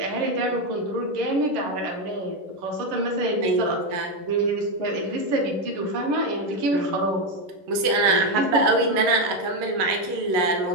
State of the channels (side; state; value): left; late; 10 ms